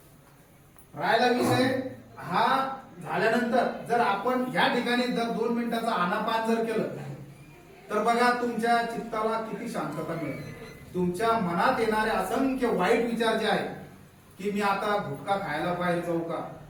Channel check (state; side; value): identical; both; correlation 1.00